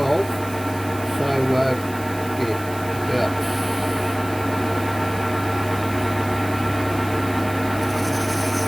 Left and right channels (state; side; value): noise; right; hiss, 16 dB below the sound